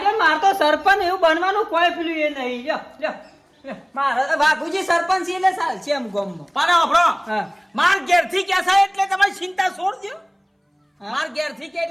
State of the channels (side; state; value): both; identical; correlation 1.00